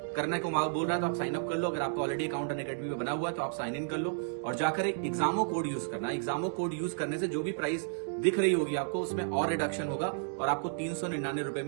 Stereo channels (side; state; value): left; silent; digital silence